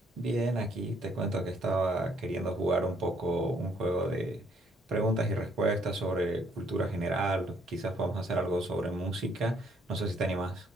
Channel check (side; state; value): both; normal; correlation 0.66